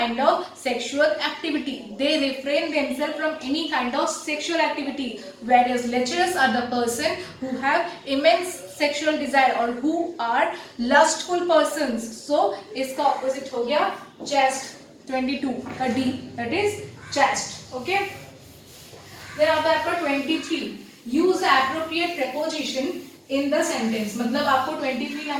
of sexual activity. They refrain themselves from any kind of sexual activity. Whereas lecherous are the person who have immense sexual desire or who are lustful persons. So इसका opposite हो गया chest. 22 का D, that is chest. Okay. Then आता है आपका 23. Use the appropriate preposition in the sentence. मतलब आपको 23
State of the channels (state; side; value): identical; both; correlation 1.00